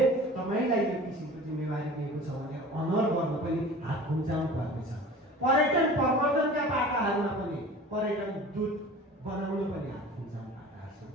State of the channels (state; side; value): normal; both; correlation 0.40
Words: तपाईँलाई यो किसिमको जिम्मेवारी दिएको छ भनेर अनर गर्न पनि हात खुम्चाउनु पर्नेछ। पर्यटन प्रवर्धनका पाटाहरूमा पनि पर्यटन दूत बनाउन पनि हात खुम्चाउनु पाटाहरू छन्।